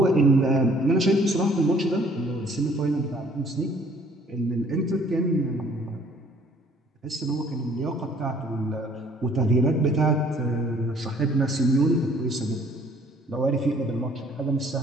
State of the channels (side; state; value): both; normal; correlation 0.58